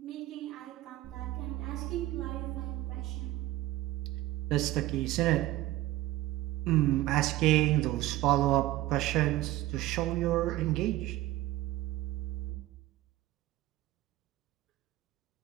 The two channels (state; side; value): quieter; left; 16.2 dB